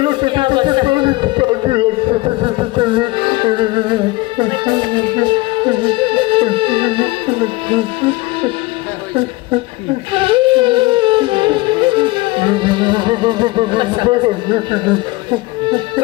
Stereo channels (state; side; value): quieter; right; 21.1 dB